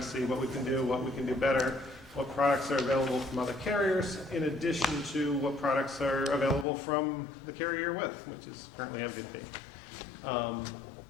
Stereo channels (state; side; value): drops out; right; at 6.7 s